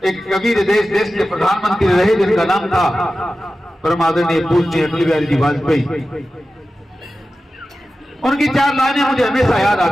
एक कबीर देश के प्रधानमंत्री रहे जिनका नाम था परम आदरणीय पूज्य अटल बिहारी जी वाजपेयी। उनकी 4 लाइनें मुझे हमेशा याद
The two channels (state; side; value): normal; both; correlation 0.94